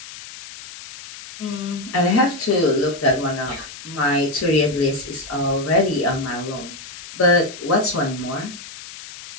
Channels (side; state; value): left; noise; hiss, 14 dB below the sound